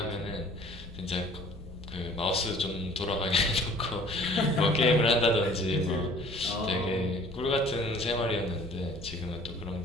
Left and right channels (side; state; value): left; noise; rumble, 15 dB below the sound